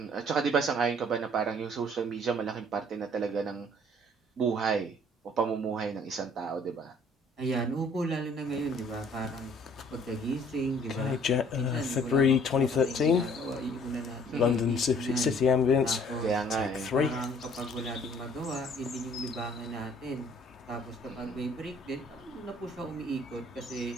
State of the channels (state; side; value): normal; both; correlation 0.57